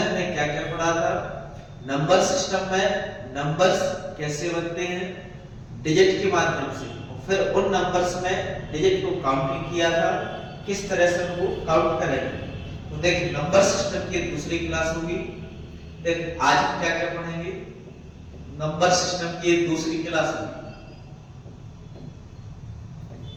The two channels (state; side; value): identical; both; correlation 1.00